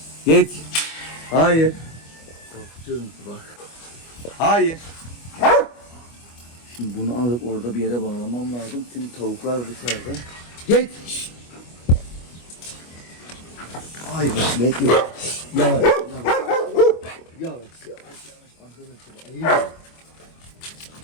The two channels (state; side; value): late; right; 25 ms